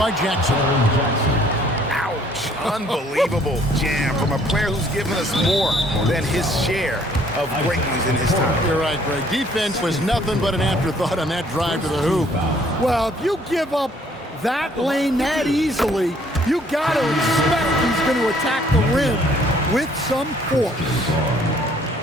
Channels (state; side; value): normal; both; correlation 0.61